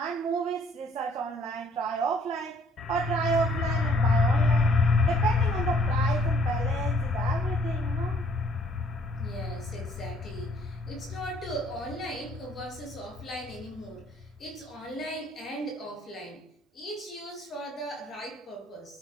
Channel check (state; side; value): normal; both; correlation 0.61